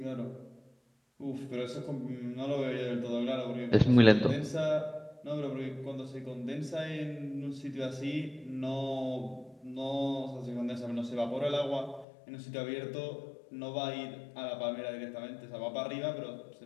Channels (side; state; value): right; drops out; at 12.1 s